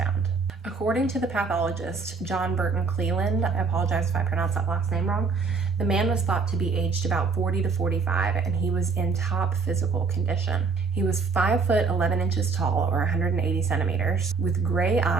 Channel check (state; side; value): quieter; left; 4.7 dB